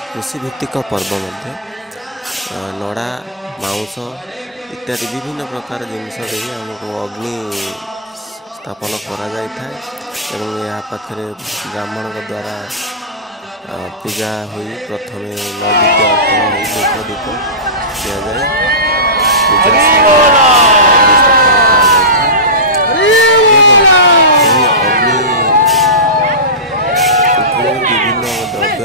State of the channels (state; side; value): normal; both; correlation -0.19